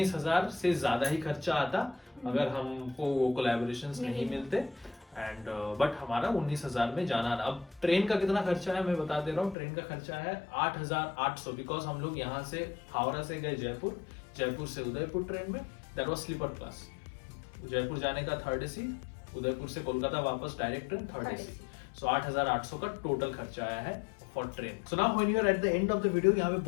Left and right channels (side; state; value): right; drops out; at 9.6 s